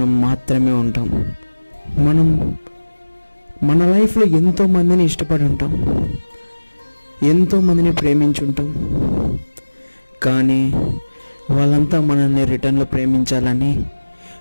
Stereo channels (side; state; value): both; inverted; correlation -1.00